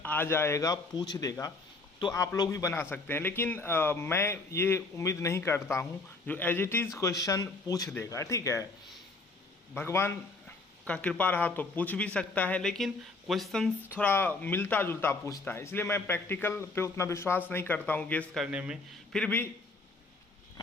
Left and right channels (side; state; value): right; quieter; 3.5 dB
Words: आ जाएगा, पूछ देगा, तो आप लोग भी बना सकते हैं। लेकिन मैं ये उम्मीद नहीं करता हूँ जो एज इट इज़ क्वेश्चन पूछ देगा। ठीक है, भगवान का कृपा रहा तो पूछ भी सकता है, लेकिन क्वेश्चन थोड़ा मिलता जुलता पूछता है, इसलिए मैं प्रैक्टिकल पे उतना विश्वास नहीं करता हूँ गेस करने में। फिर भी